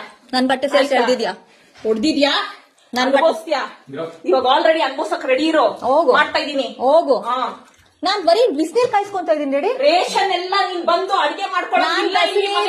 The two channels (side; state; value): both; identical; correlation 1.00